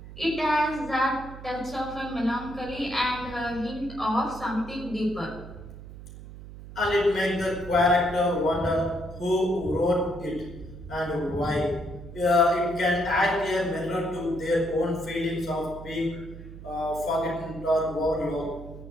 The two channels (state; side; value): noise; right; hum, 14 dB below the sound